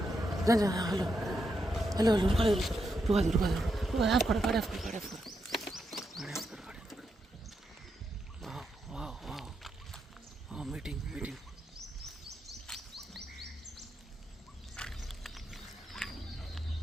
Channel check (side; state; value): both; normal; correlation 0.82